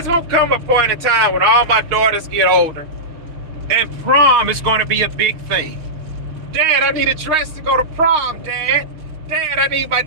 going to come a point in time when all my daughters get older and prom is going to be a big thing. Dad, I need a dress to go to prom, Dad. Dad, I need my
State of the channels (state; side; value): late; left; 6.4 ms